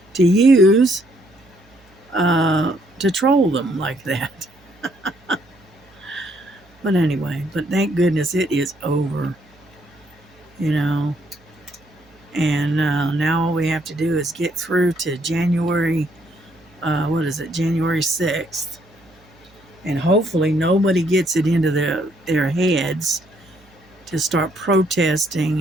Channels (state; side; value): noise; right; hum, 30 dB below the sound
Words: to use to troll them like that. But anyway, but thank goodness it is over. You know, and now all we have to do is get through to January. What is it? January 6th. And hopefully nobody gets it into their heads to start